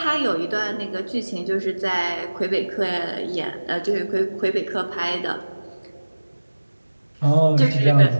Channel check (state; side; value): inverted; both; correlation -1.00